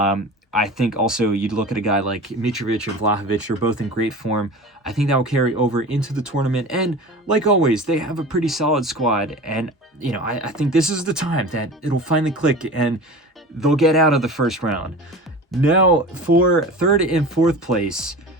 I think also you'd look at a guy like Mitrovic and Vlahovic. They're both in great form. I think that will carry over into the tournament. And like always, they have a pretty solid squad. And, I think this is the time that it'll finally click and they'll get out of the first round. Now, for third and fourth place,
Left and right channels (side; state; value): both; normal; correlation 0.35